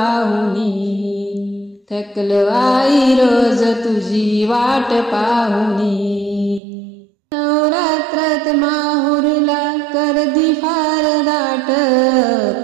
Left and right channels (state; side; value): drops out; left; at 6.6 s